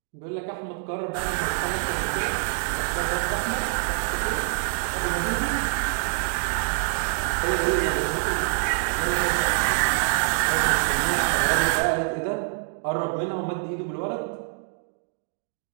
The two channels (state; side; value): silent; left; digital silence